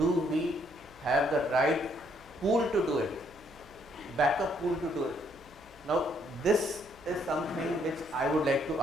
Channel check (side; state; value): left; noise; hum, 25 dB below the sound